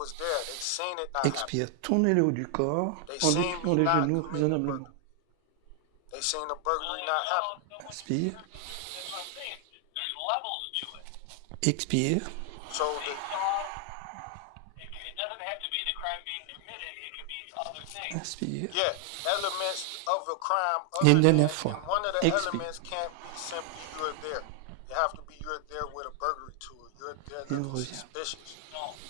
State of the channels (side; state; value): both; different; correlation 0.00